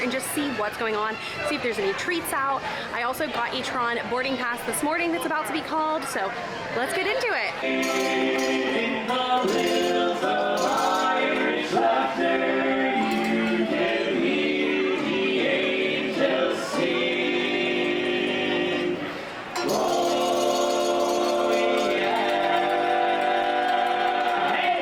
just see what's going on, see if there's any treats out. I also got a Tron boarding pass this morning that's about to be called, so let's get into it. In the hills of Irish laughter, you can hear the angels sing. Oh yeah.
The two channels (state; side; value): identical; both; correlation 1.00